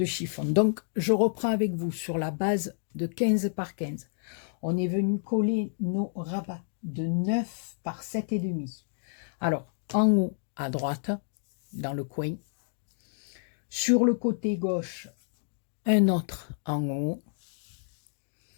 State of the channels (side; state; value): right; silent; digital silence